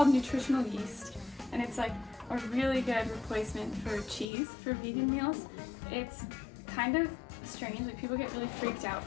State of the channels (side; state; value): right; drops out; at 4.2 s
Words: nutritional yeast, and it's like a really good replacement for cheese for vegan meals. It's kind of strange, like people get really freaked out